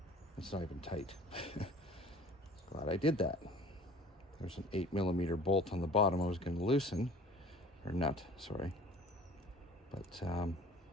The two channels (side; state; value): both; normal; correlation 0.47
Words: It's not even tight. Glad I did that. There's an 8mm bolt on the bottom I was going to loosen, or nut, sorry. But it's